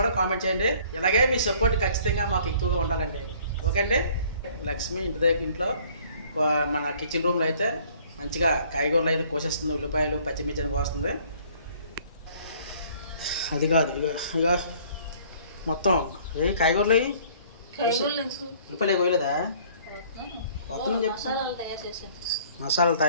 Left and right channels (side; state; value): both; inverted; correlation -0.56